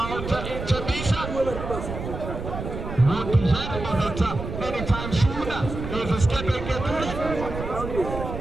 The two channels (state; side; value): noise; right; rumble, 7 dB below the sound